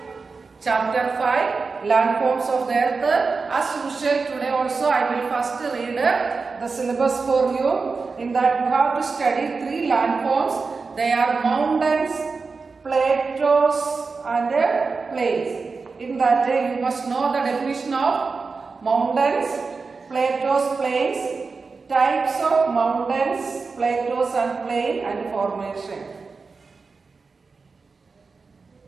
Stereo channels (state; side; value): quieter; left; 4.5 dB